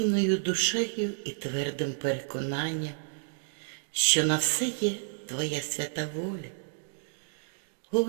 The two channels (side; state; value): left; silent; digital silence